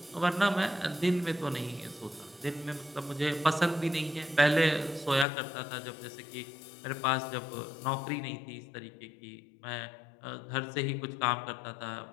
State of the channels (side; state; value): right; drops out; at 5.2 s